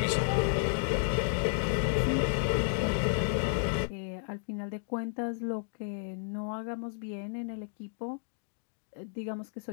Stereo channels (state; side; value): silent; right; digital silence